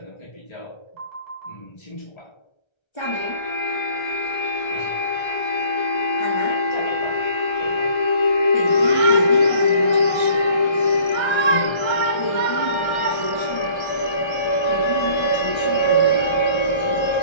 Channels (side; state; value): right; late; 1.3 ms